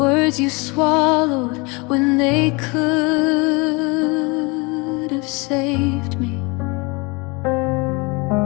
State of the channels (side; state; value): right; quieter; 27.9 dB